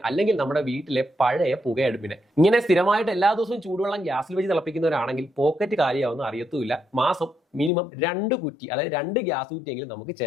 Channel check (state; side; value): drops out; right; at 7.7 s